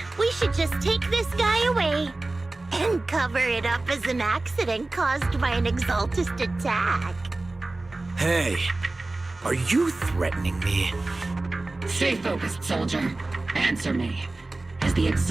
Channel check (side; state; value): left; quieter; 3.1 dB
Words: we should just take this guy away and cover it up as an accident caused by an Exaltist attack. Hey, are you threatening me? Stay focused, soldier. Answer me. Has the